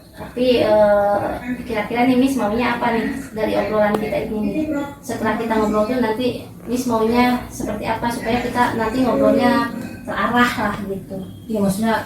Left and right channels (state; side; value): identical; both; correlation 1.00